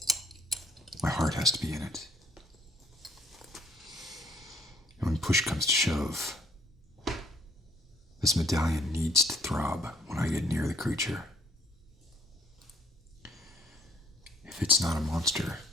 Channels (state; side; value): normal; both; correlation 0.60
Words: My heart has to be in it. And when push comes to shove, this medallion needs to throb when I get near the creature. If it's not a monster,